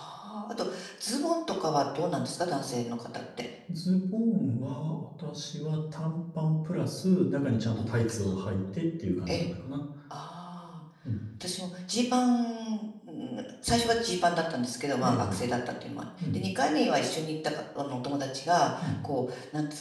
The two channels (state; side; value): identical; both; correlation 1.00